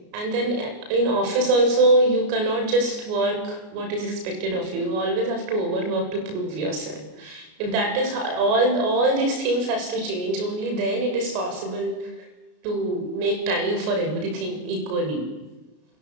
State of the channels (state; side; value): late; left; 33 ms